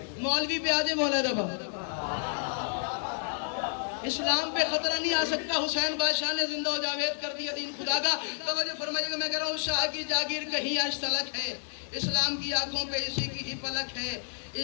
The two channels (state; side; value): silent; right; digital silence